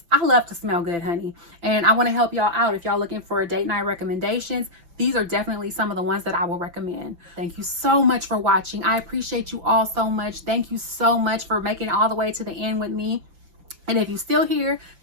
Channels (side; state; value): left; late; 5.9 ms